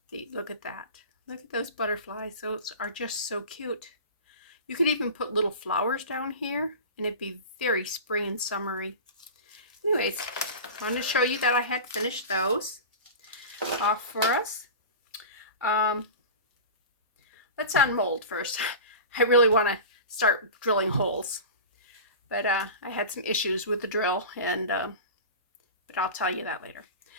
Look at that. Look at those butterflies. Those are just so cute. You could even put little flowers down here and it'd be very spring and summery. Anyways, I wanted to show you that I had finished those off for us. Let's unmold first. I really want to start drilling holes, but I had some issues with the drill, and but I'll tell you that later.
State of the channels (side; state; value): both; inverted; correlation -0.31